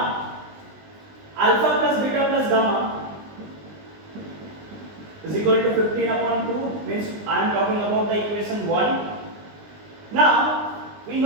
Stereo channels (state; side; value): late; left; 20 ms